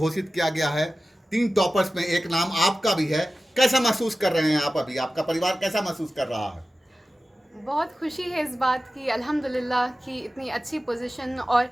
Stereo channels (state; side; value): normal; both; correlation 0.95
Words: किया गया है? 3 टॉपर्स में एक नाम आपका भी है। कैसा महसूस कर रहे हैं आप अभी? आपका परिवार कैसा महसूस कर रहा है? बहुत खुशी है इस बात की अल्हम्दुलिल्लाह कि इतनी अच्छी पोजीशन और